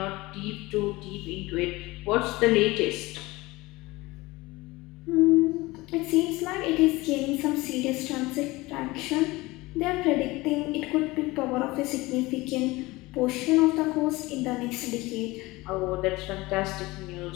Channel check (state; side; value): quieter; right; 21.1 dB